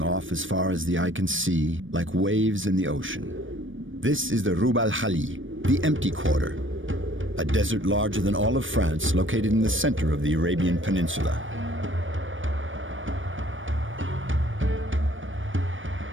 off as far as the eye can see, like waves in the ocean. This is the Rub al-Khali, the empty quarter, a desert larger than all of France located in the center of the Arabian Peninsula.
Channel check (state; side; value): late; left; 0.57 ms